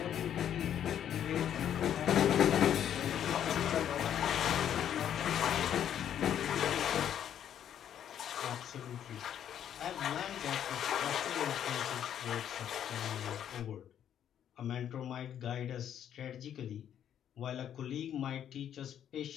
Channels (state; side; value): quieter; right; 9.8 dB